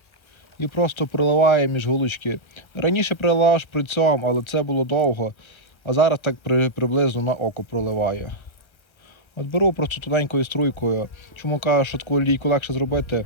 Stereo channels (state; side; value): late; right; 1.2 ms